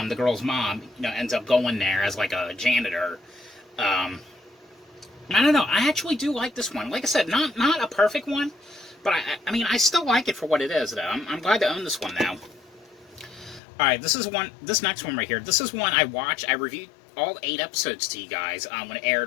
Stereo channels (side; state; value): right; drops out; at 13.6 s